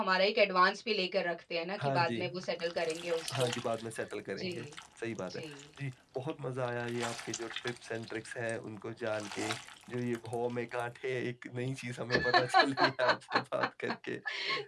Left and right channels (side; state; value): both; identical; correlation 1.00